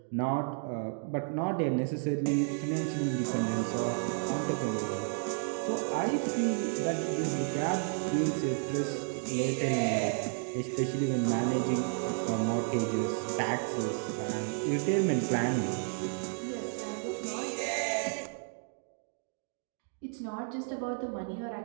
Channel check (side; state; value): left; silent; 56 dB below the other